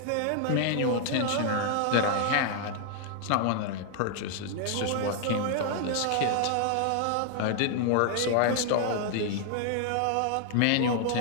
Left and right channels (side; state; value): both; different; correlation 0.00